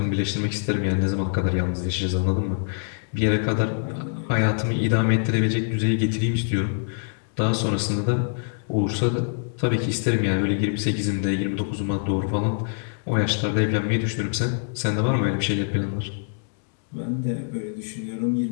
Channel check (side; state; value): right; silent; digital silence